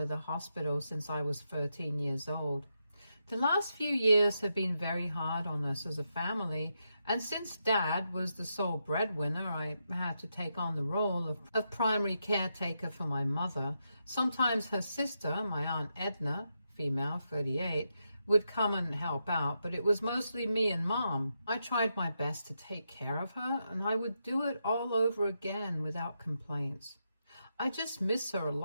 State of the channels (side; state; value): both; inverted; correlation -0.84